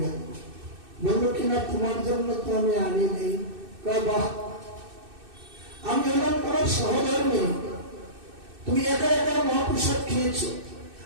গেল। বললো কিনা তোমার জন্য তো আমি আনি নেই। বাহ, আমি হলাম তোমার সহধর্মী, তুমি একা একা মহাপ্রসাদ খেয়েছো,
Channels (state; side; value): late; left; 2.6 ms